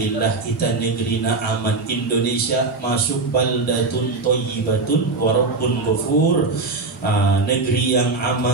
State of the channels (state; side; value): quieter; left; 3.8 dB